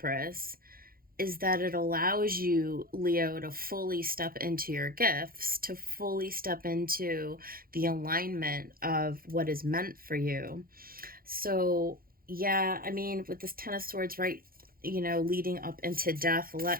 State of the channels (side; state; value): left; late; 0.42 ms